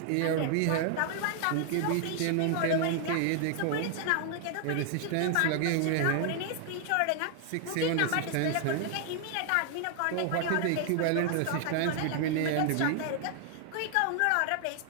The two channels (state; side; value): different; both; correlation 0.00